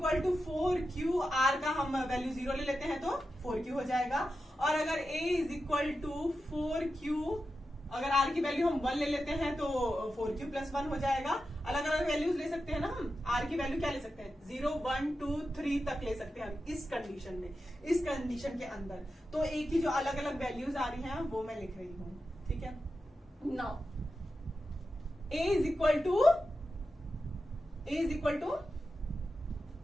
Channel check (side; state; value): both; normal; correlation 0.90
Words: to 4q, r का हम वैल्यू 0 ले लेते हैं तो 4q हो जाएगा। और अगर a is equal to 4q, अगर r की वैल्यू हम 1 ले लेते हैं तो 4q प्लस 1 हो जाएगा। अलग अलग वैल्यूज ले सकते हैं ना हम, r की वैल्यू क्या ले सकते हैं 0, 1, 2, 3 तक ले सकते हैं हम इस कंडीशन में, इस कंडीशन के अंदर। तो a की जो अलग अलग वैल्यूज आ रही हैं वो मैं लिख रही हूं, ठीक है। Now a is equal to